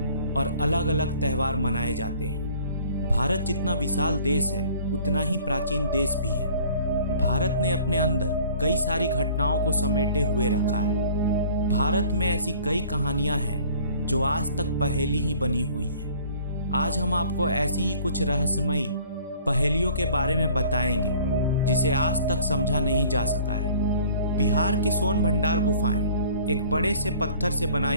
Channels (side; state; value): both; inverted; correlation -0.51